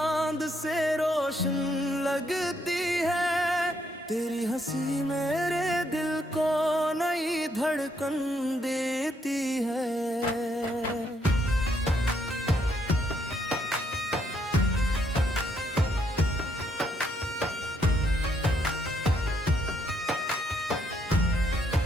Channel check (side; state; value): both; normal; correlation 0.73